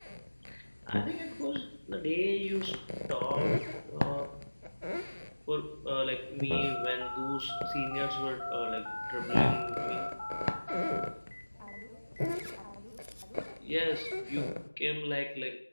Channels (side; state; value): both; inverted; correlation -1.00